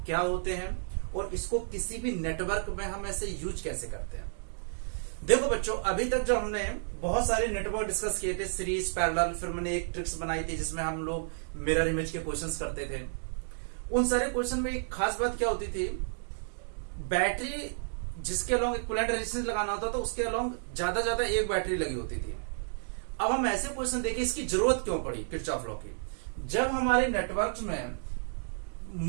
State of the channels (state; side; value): silent; left; digital silence